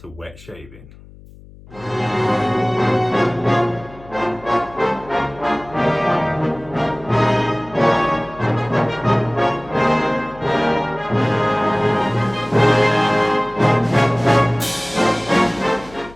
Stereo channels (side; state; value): left; noise; hum, 21 dB below the sound